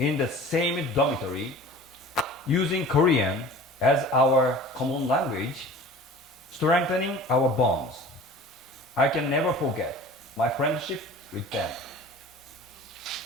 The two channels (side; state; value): both; normal; correlation 0.42